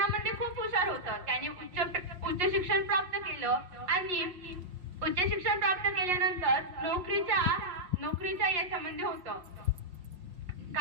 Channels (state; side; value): late; left; 5.6 ms